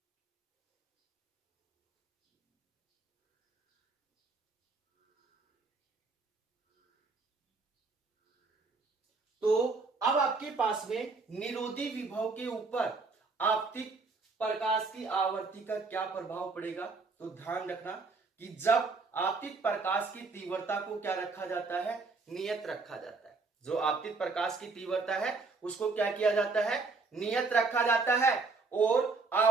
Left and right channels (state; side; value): quieter; left; 4.0 dB